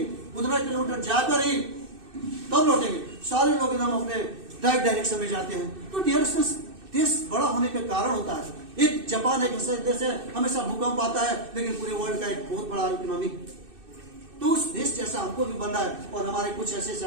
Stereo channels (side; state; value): left; late; 2.6 ms